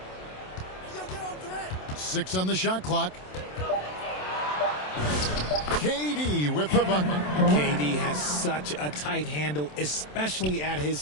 Six on the shot clock. KD with the bucket. KD has such a tight handle, especially at his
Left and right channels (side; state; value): right; late; 27 ms